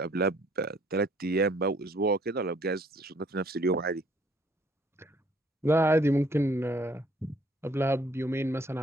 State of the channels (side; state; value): both; normal; correlation 0.61